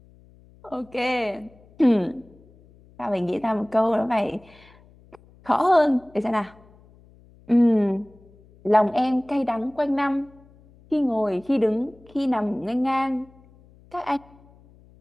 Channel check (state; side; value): noise; left; hum, 27 dB below the sound